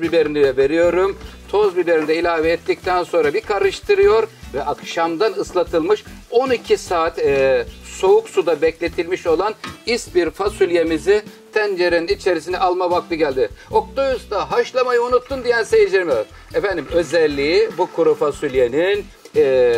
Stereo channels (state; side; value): identical; both; correlation 1.00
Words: biberini de veriyorum. Toz biberini de ilave ettikten sonra bir karıştırıyor ve akşamdan ıslatılmış 12 saat soğuk suda bekletilmiş olan ispir fasulyemizi tencerenin içerisine alma vakti geldi. Oktay Usta haşlamayı unuttun diyen seyircilerime. Özelliği bu kuru fasulyenin